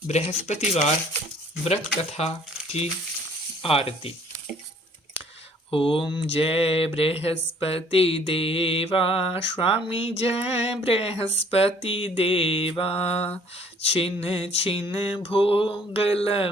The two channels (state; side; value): normal; both; correlation 0.57